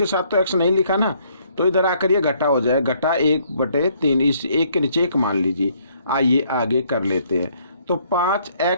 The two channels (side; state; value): both; inverted; correlation -0.66